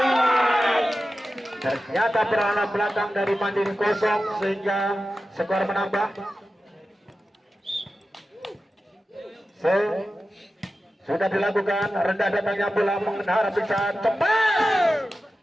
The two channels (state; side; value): normal; both; correlation 0.93